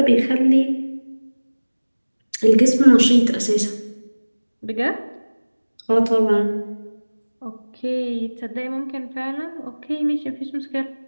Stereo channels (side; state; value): both; inverted; correlation -1.00